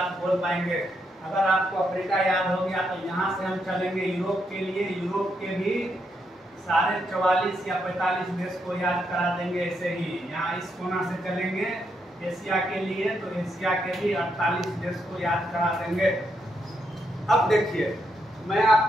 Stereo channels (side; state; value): both; normal; correlation 0.80